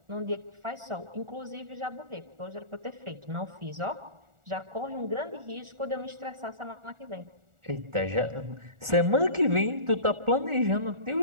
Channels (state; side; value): late; left; 1.4 ms